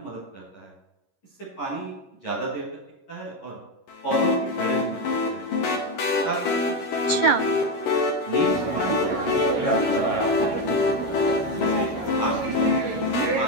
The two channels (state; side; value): late; right; 11 ms